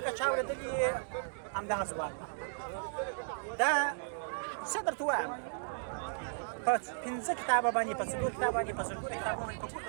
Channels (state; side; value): silent; left; digital silence